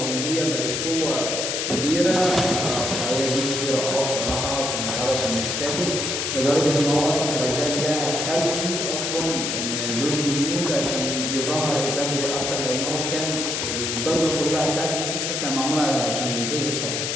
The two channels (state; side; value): noise; left; hiss, 1 dB below the sound